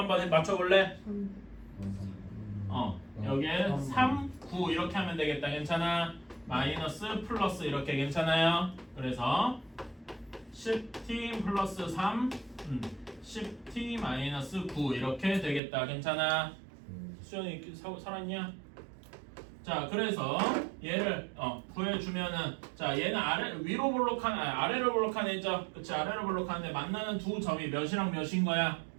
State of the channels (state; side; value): drops out; left; at 15.6 s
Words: 맞춰볼래? 여기에 3, 9 이렇게 하면 되겠다. 괜찮아? 마이너스 플러스 이렇게 괜찮아요? 그래서 10t 플러스 3 10t 마이너스 9 이렇게 되겠다. 괜찮아? 수연이 살았냐? 자 그래서 얘를 구해주면은 자 얘는 위로 볼록한 아래로 볼록한 애죠. 그치? 아래로 볼록한데 만나는 두 점이 몇이랑 몇인 거야?